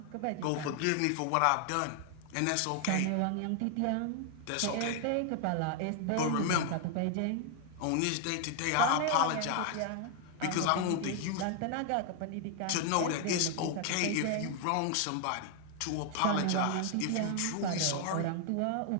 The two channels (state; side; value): different; both; correlation 0.00